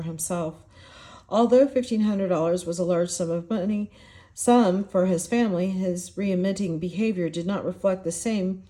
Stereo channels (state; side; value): identical; both; correlation 1.00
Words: himself. Although $1,500 was a large sum of money, for his family, his remitting behavior did not reflect the same